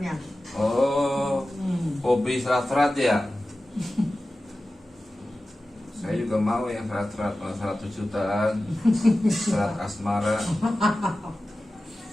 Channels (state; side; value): normal; both; correlation 0.95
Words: Oh, hobi serat-serat ya? Saya juga mau yang serat-serat, 100 jutaan, serat asmara,